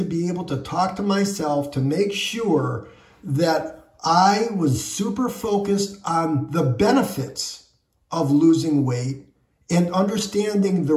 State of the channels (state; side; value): identical; both; correlation 1.00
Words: be able to talk to myself to make sure that I was super focused on the benefits of losing weight and understanding the